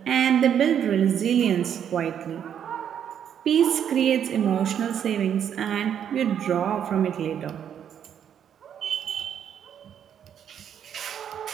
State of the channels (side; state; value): left; quieter; 8.9 dB